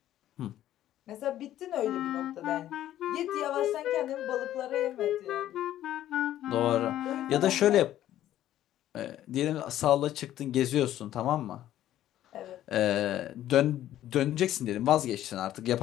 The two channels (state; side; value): quieter; right; 12.7 dB